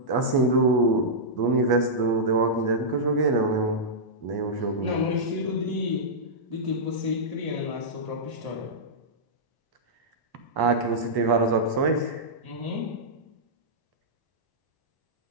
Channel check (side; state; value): right; late; 1.0 ms